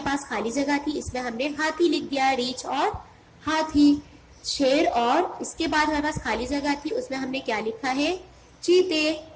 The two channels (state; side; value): identical; both; correlation 1.00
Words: پاس خالی جگہ تھی، اس میں ہم نے ہاتھی لکھ دیا، ریچھ اور ہاتھی. شیر اور اس کے بعد ہمارے پاس خالی جگہ تھی، اس میں ہم نے کیا لکھا ہے؟ چیتے.